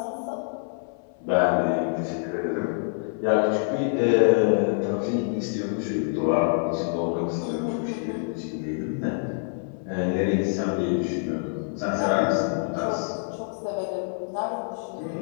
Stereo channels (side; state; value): right; silent; 61 dB below the other